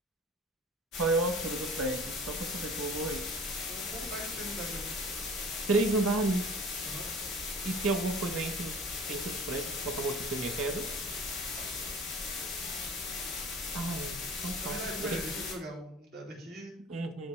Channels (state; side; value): normal; both; correlation 0.44